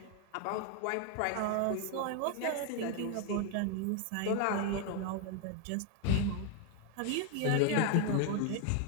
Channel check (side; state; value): both; different; correlation 0.01